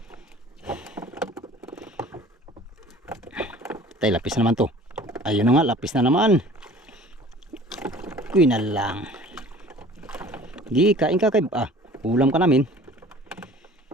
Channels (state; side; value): normal; both; correlation 0.47